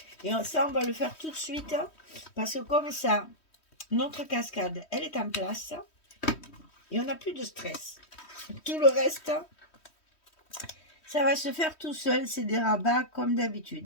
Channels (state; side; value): late; right; 3.1 ms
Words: Et ça, on va le faire tout de suite, parce que comme ça, notre cascade, elle est en place, et on n'a plus de stress. Tout le reste, ça va se faire tout seul, c'est des rabats comme